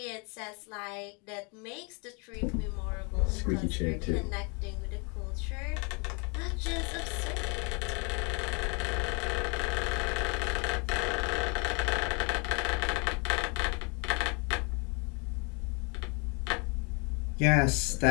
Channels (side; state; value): right; quieter; 33.3 dB